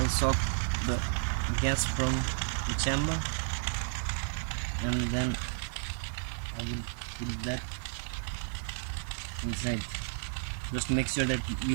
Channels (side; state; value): left; silent; digital silence